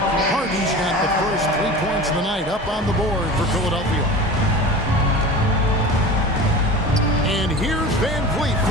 Harden's got the first 3 points of the night up on the board for Philadelphia. And here's Van Vliet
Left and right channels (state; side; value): normal; both; correlation 0.34